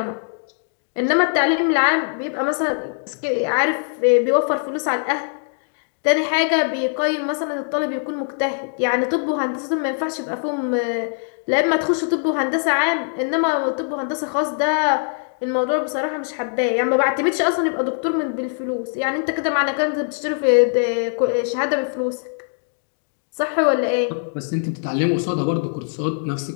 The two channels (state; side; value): silent; right; digital silence